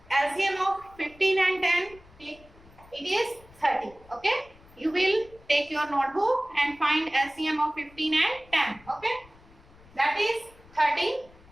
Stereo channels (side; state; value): left; noise; rumble, 25 dB below the sound